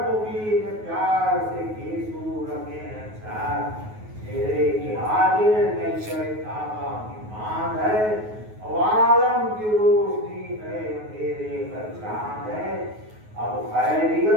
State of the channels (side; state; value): left; late; 9.4 ms